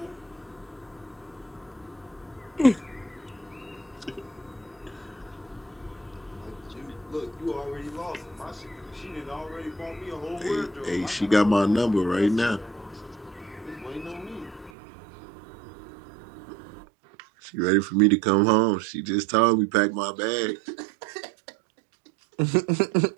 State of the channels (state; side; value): drops out; left; at 14.7 s